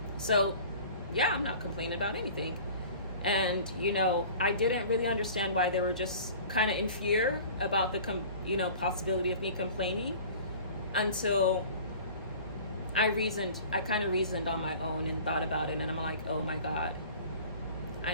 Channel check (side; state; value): both; inverted; correlation -0.44